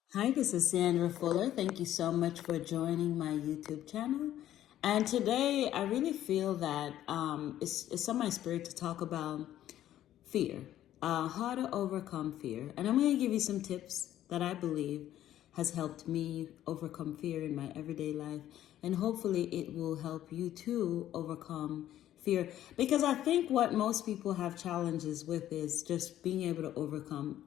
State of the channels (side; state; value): right; quieter; 12.4 dB